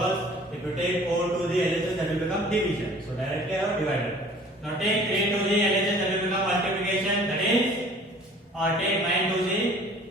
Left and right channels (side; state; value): both; normal; correlation 0.50